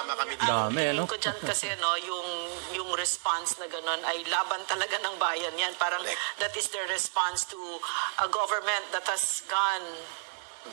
kami dito. Dami, no? Ko dyan kasi yung response na gano'n ay laban talaga ng bayan yan. Parang that is the response to a government that has gone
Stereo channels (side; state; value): left; silent; 57 dB below the other